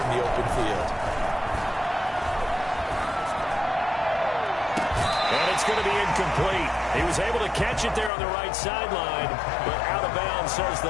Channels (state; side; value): drops out; right; at 8.1 s